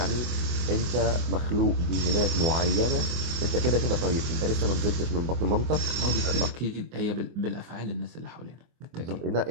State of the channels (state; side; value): late; left; 24 ms